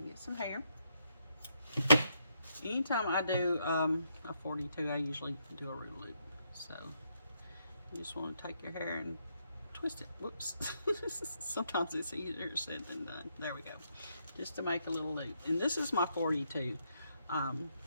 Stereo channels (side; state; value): both; inverted; correlation -0.77